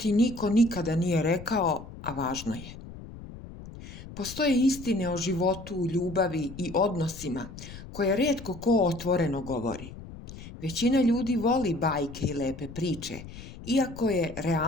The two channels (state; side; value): noise; left; rumble, 14 dB below the sound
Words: niko nikada nije rekao, a važno je. Postoje istine o životu, ljubavi i odnosima koje rijetko ko otvoreno govori. Većina ljudi voli bajke i lepe priče, iako je